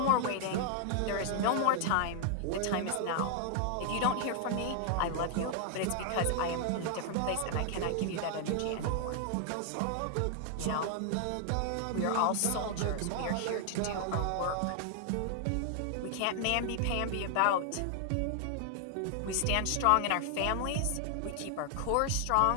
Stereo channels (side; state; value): both; different; correlation 0.00